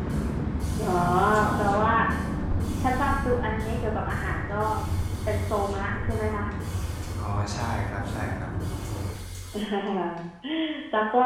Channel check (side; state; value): both; identical; correlation 1.00